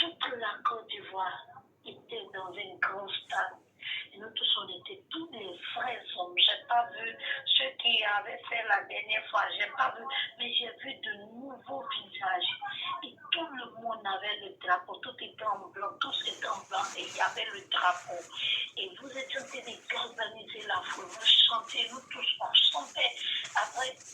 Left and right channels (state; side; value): identical; both; correlation 1.00